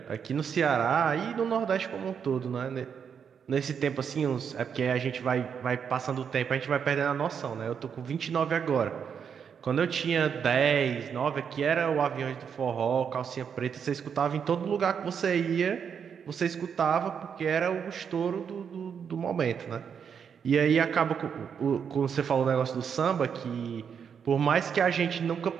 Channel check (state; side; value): quieter; left; 7.2 dB